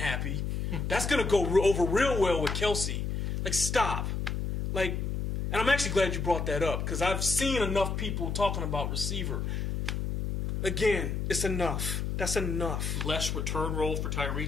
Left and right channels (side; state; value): left; noise; hum, 2 dB below the sound